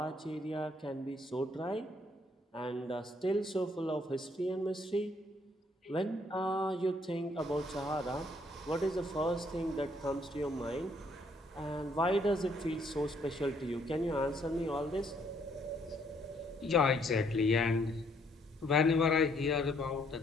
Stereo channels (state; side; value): normal; both; correlation 0.68